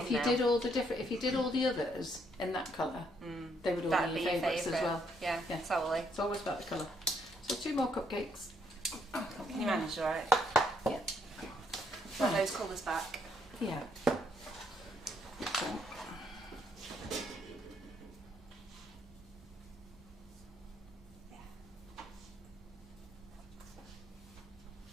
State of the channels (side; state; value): both; normal; correlation 0.72